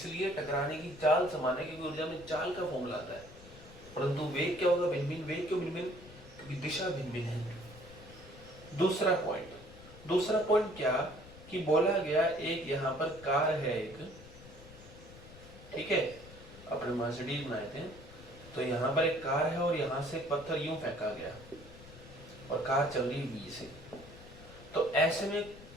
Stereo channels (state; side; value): noise; left; rumble, 18 dB below the sound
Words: टकराने की चाल समान है, क्योंकि ऊर्जा में चाल का फॉर्मूला आता है। परंतु वेग क्या होगा, भिन्न भिन्न। वेग क्यों भिन्न भिन्न, क्योंकि दिशा भिन्न भिन्न है। दूसरा पॉइंट क्या, कि बोला गया एक यहाँ पर कार है एक, ठीक है, अपने मर्सिडीज बनाए थे, तो यहाँ पर एक कार है और यहाँ से पत्थर यूं फेंका गया और कार चल रही बी से, तो ऐसे में